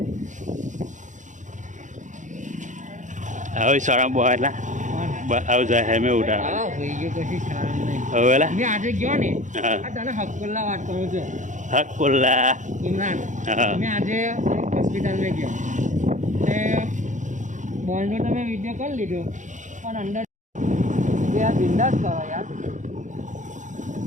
હવે શરમ બોલા આવ જાય હે મે ઉડા આ હોઈ ગયો કશી શરમ નહીં હવેલા મે આજે ગયો ને આ તને હકુલ્લા વાત કરું છું। હકુલ્લા ઇમરાન મે આજે હોસ્પિટલ મે ગયો તે બોલનો તમે વિડિયો કરી લીધો પણ અંદર જે આ બિંદાસ કરો યાર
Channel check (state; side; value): late; left; 0.36 ms